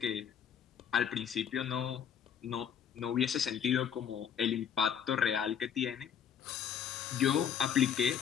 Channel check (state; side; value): quieter; right; 8.4 dB